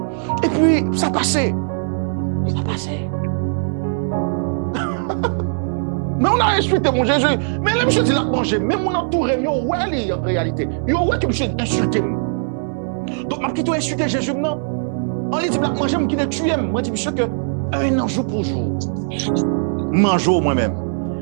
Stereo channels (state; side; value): silent; left; 60 dB below the other